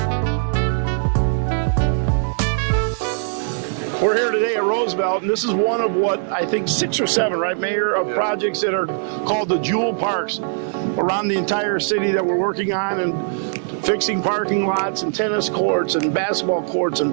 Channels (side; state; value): left; silent; digital silence